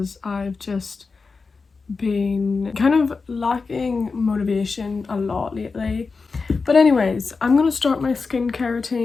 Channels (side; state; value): right; quieter; 4.5 dB